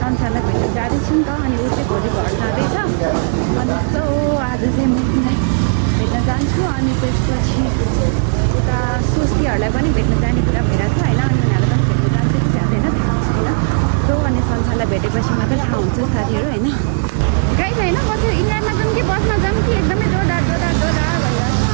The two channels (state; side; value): silent; left; digital silence